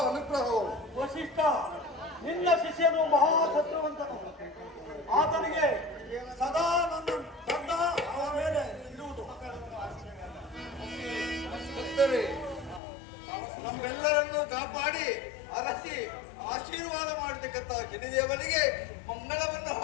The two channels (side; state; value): right; drops out; at 12.8 s